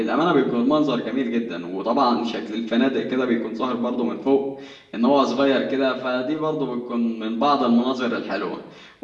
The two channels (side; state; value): both; identical; correlation 1.00